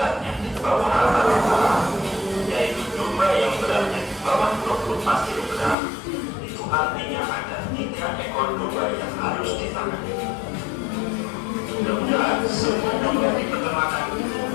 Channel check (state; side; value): drops out; right; at 5.8 s